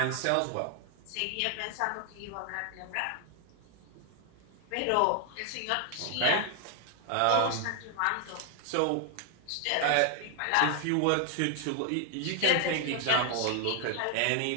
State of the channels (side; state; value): both; different; correlation 0.00